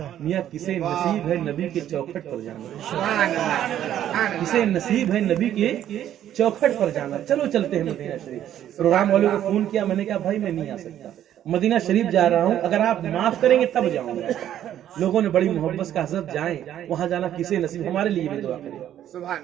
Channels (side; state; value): left; quieter; 11.2 dB